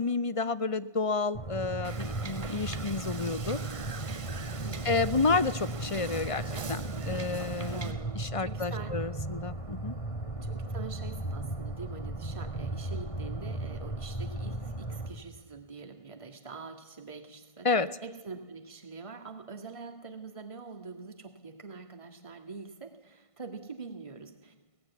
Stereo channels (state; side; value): late; right; 1.5 ms